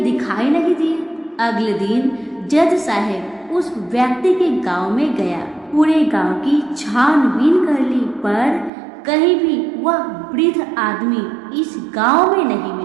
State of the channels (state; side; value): drops out; left; at 8.7 s